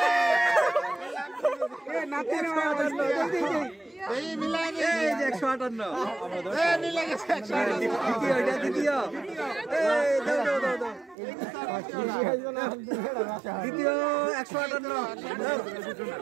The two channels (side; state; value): left; drops out; at 11.2 s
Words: এ নাতি এই মিলাই এই যে 158 এই মিলাই গেছে 158 দ্বিতীয় এই দাও দ্বিতীয় 158